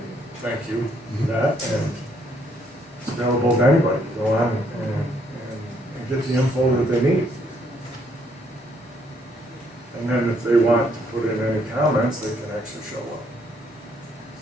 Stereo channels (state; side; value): normal; both; correlation 0.69